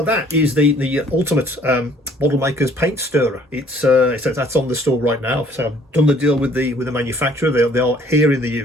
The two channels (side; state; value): both; normal; correlation 0.58